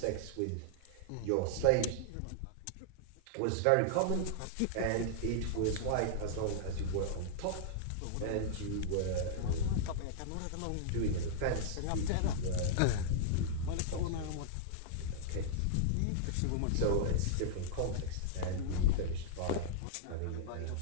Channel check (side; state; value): both; different; correlation -0.01